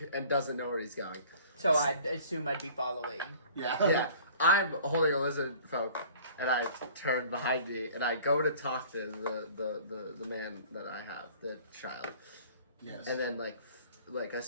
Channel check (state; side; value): inverted; both; correlation -0.49